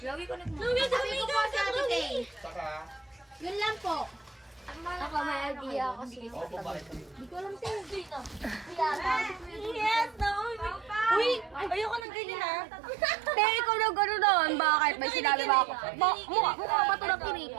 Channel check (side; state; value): left; drops out; at 12.1 s